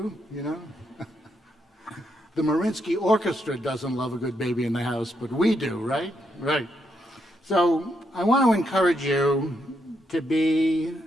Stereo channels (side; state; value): both; normal; correlation 0.79